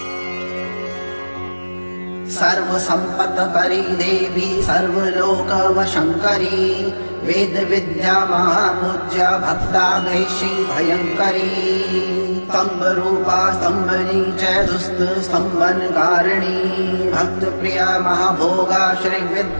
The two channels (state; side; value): inverted; both; correlation -1.00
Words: सर्वसम्पत्करी देवी सर्वलोकवशङ्करी वेद विद्या महापूज्या भक्ताग्रेशी भयङ्करी स्तम्भरूपा स्तम्भनी च दुस्त स्तम्भनकारिणी भक्तप्रिया महाभोगा